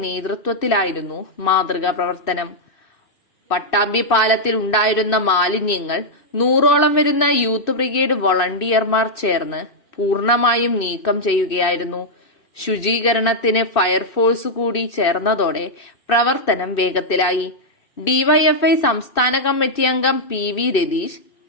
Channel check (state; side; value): late; right; 2.6 ms